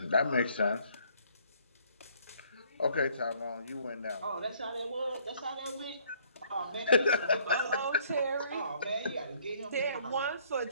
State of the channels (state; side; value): inverted; both; correlation -0.63